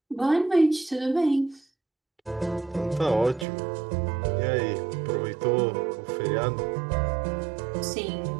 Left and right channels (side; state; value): left; drops out; at 3.5 s